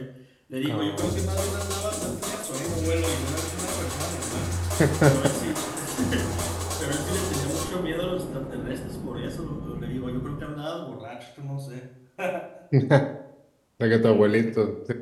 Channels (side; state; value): both; identical; correlation 1.00